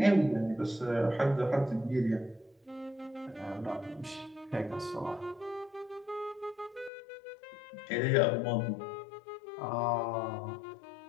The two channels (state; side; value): drops out; right; at 6.9 s